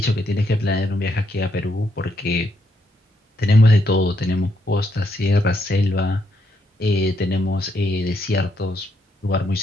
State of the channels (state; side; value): normal; both; correlation 0.77